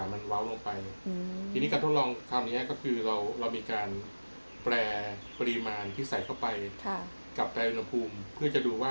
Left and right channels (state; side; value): inverted; both; correlation -1.00